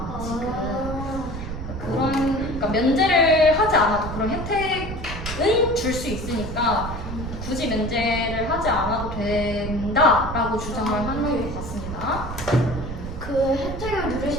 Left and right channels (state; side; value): noise; right; rumble, 8 dB below the sound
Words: 지금. 그러니까 면제를 하지 않아도 그런 혜택은 줄 수 있으니까 굳이 면제를 하지 않아도 된다라고 주장을 하는 것 같습니다. 그 혜택을